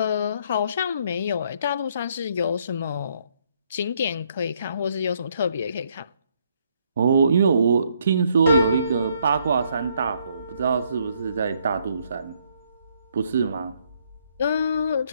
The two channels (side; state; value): both; inverted; correlation -0.70